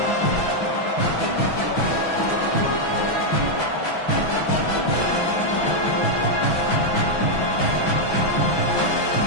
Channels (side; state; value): right; late; 6.1 ms